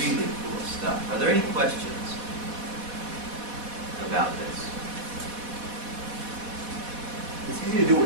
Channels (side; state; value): left; late; 4.1 ms